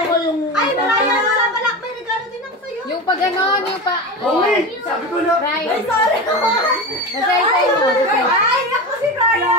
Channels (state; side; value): normal; both; correlation 0.24